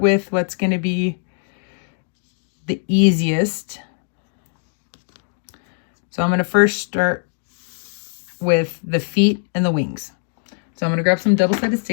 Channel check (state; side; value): silent; right; 65 dB below the other